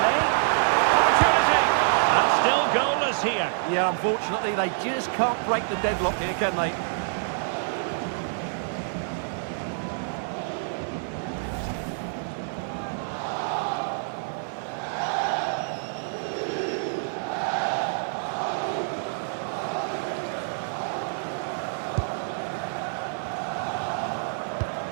Opportunity. And still goalless here. Yeah, unfortunately, they just can't break the deadlock here, can they?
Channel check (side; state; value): left; silent; 56 dB below the other